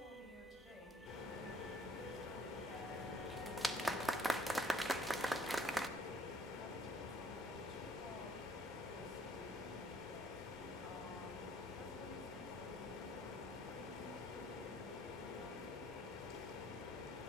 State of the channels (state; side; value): normal; both; correlation 0.61